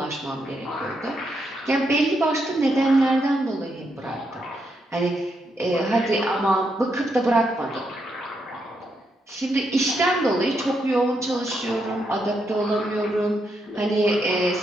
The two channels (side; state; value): both; normal; correlation 0.80